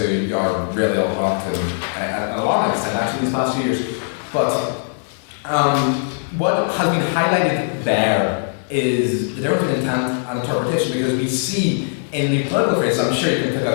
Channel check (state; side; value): silent; right; 66 dB below the other